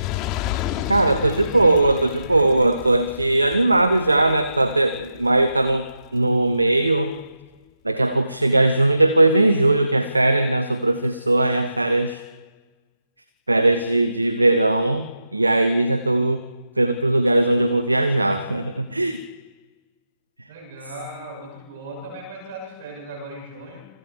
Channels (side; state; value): both; inverted; correlation -0.88